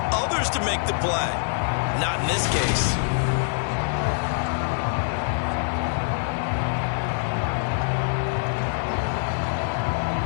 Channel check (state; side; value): silent; right; digital silence